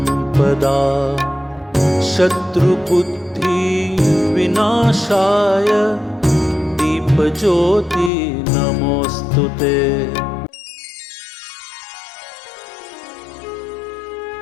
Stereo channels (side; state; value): right; drops out; at 8.1 s